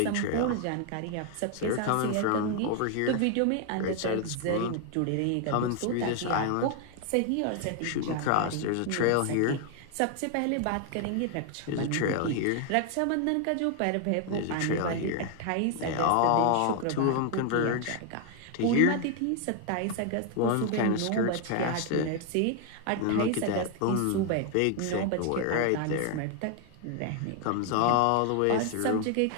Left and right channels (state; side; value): different; both; correlation 0.00